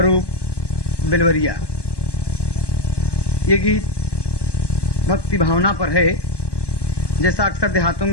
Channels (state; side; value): late; right; 1.1 ms